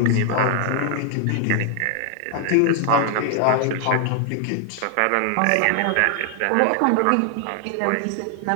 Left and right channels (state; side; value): different; both; correlation 0.00